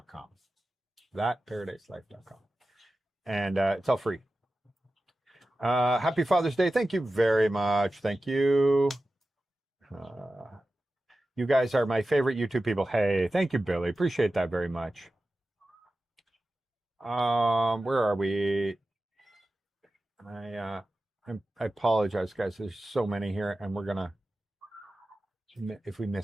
Thatparadiselife.com. And it's all free. Happy Father's Day. Thank you very much. Thank you. You guys are my favorite YouTube people. Hey, thank you, Billy. Appreciate that very much. Where are we? I apologize, guys. There's so many here, and we're gonna, if we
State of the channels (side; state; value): both; normal; correlation 0.94